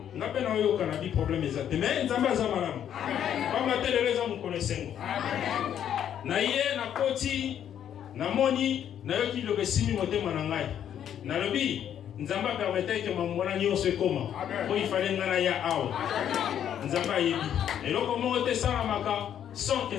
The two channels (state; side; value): quieter; right; 9.7 dB